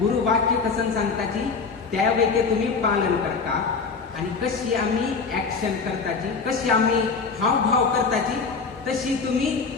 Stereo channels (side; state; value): right; quieter; 4.9 dB